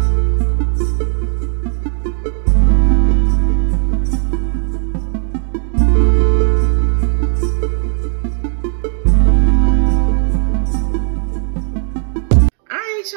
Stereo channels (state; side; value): silent; left; digital silence